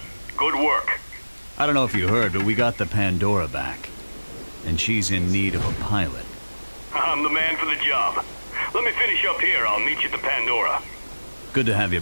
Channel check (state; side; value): inverted; both; correlation -1.00